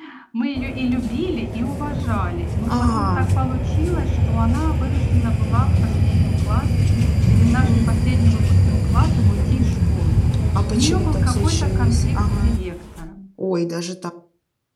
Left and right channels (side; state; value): both; identical; correlation 1.00